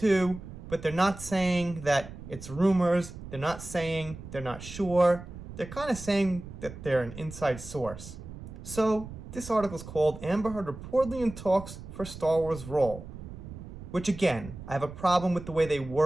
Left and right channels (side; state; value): right; noise; rumble, 13 dB below the sound